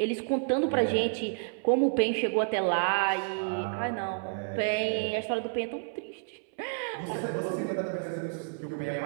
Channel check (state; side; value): silent; left; 58 dB below the other